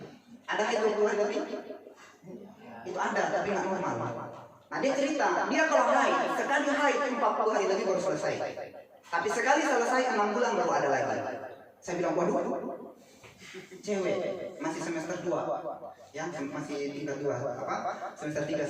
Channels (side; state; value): both; identical; correlation 1.00